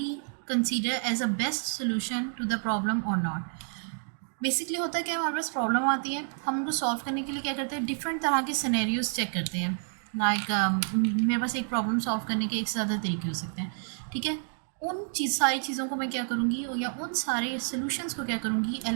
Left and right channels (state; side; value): silent; left; 58 dB below the other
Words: consider as a best solution to the problem और not. Basically होता है क्या, हमारे पास problem आती है, हम उनको सॉल्व करने के लिए क्या करते हैं? डिफरेंट तरह के सिनेरियोज चेक करते हैं। लाइक मेरे पास एक प्रॉब्लम सॉल्व करने के एक से ज़्यादा तरीके हो सकते हैं, ठीक है। उन सारी चीज़ों को मैं क्या करूँगी, या उन सारे सोल्यूशंस को क्या करूँगी,